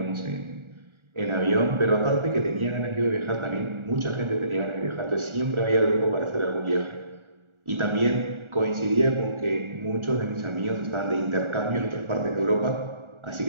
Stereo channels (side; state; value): left; late; 1.4 ms